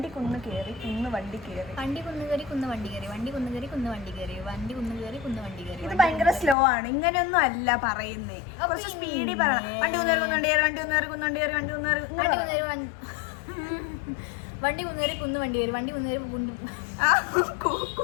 കുന്ന് കയറി കുന്ന് വണ്ടി കയറി. വണ്ടി കുന്ന് കയറി കുന്ന് വണ്ടി കയറി. വണ്ടി കുന്ന് കയറി കുന്ന് വണ്ടി കയറി. വണ്ടി കുന്ന് കയറി കുന്ന് വണ്ടി കയറി. ഇത് ഭയങ്കര സ്ലോ ആണ്, ഇങ്ങനെയൊന്നും അല്ല പറയുന്നേ. കുറച്ച് സ്പീഡിൽ പറയണം. വണ്ടി കുന്നേറി കുന്നുവണ്ടി കയറി, വണ്ടി കുന്നേറി കുന്നുവണ്ടി കയറി, വണ്ടി കുന്നേറി വണ്ടി കുന്നേറി വണ്ടി കുന്നേറി കുന്ന് വണ്ടി കയറി. വണ്ടി കുന്നേറി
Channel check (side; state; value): right; drops out; at 6.6 s